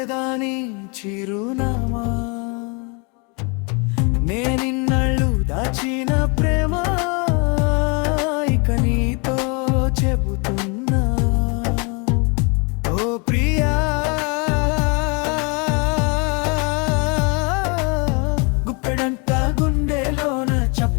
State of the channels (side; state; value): right; quieter; 32.4 dB